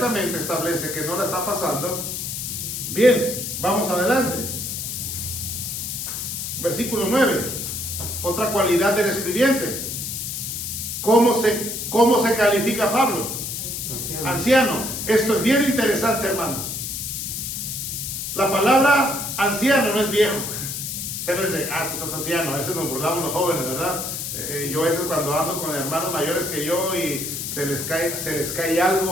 establece que no la está pasando. Bien, vamos adelante. Versículo 9. Otra cualidad del escribiente. ¿Cómo se califica Pablo? Anciano. Esto es bien interesante, hermanos. La palabra anciano no es viejo. O sea, no es de, tú estás anciano. A veces nos burlamos los jóvenes, ¿verdad? Yo a veces cuando ando con hermanos mayores que yo y se les cae algo,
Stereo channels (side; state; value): left; noise; hiss, 4 dB below the sound